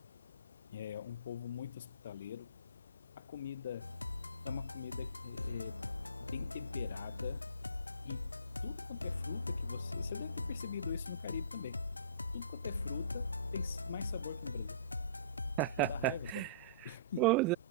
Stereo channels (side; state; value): both; inverted; correlation -0.44